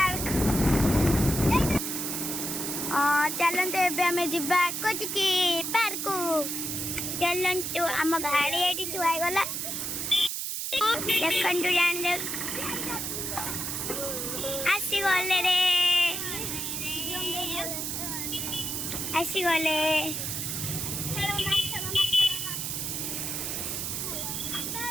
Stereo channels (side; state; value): right; noise; hiss, 3 dB below the sound